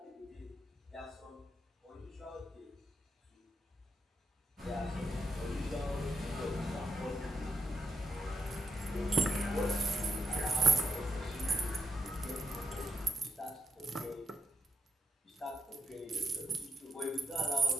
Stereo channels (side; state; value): both; normal; correlation 0.82